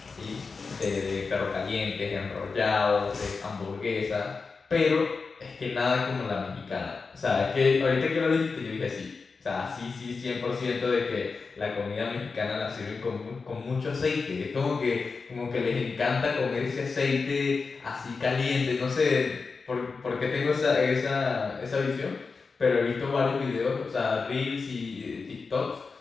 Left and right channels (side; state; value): right; quieter; 4.6 dB